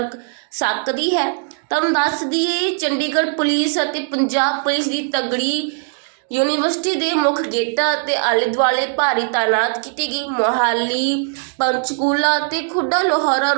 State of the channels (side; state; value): left; silent; 59 dB below the other